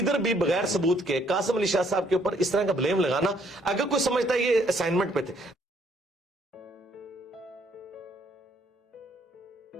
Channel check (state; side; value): normal; both; correlation 0.67